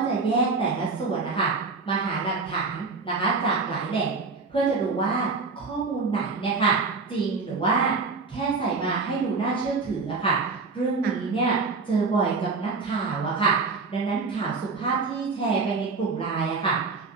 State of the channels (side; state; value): left; quieter; 4.3 dB